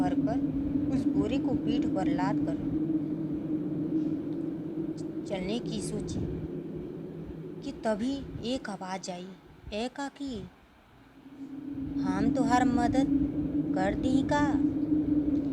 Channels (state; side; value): identical; both; correlation 1.00